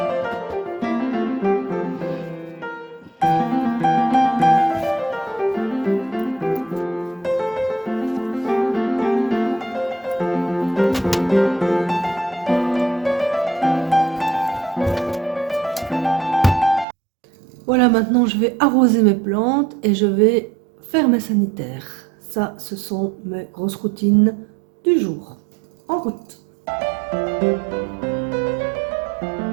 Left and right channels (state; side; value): drops out; left; at 16.9 s